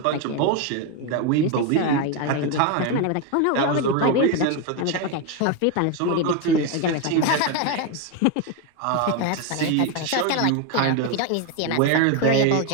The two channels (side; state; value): both; different; correlation 0.01